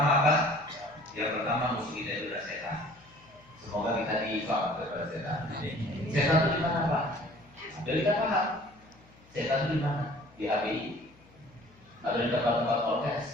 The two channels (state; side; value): noise; left; hum, 28 dB below the sound